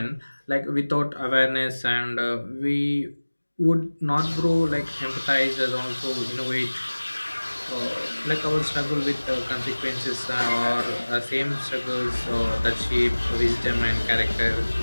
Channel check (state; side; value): inverted; both; correlation -1.00